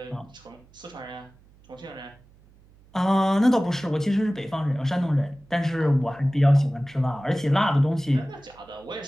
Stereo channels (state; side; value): noise; right; hum, 28 dB below the sound